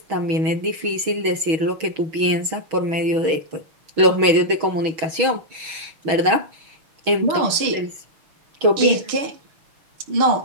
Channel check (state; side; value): late; left; 6.3 ms